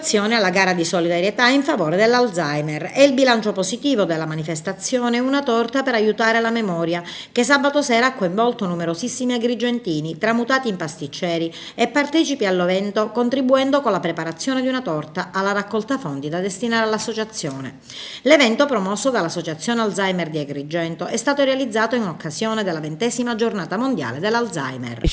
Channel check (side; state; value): both; identical; correlation 1.00